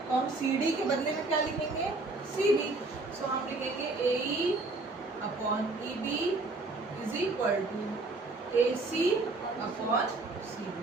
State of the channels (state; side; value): quieter; left; 3.3 dB